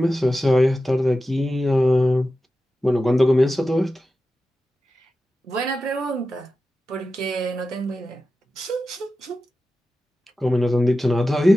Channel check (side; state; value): both; normal; correlation 0.93